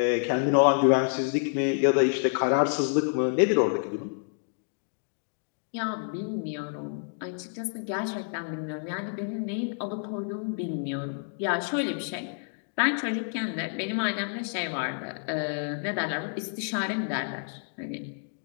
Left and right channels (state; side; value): silent; right; 59 dB below the other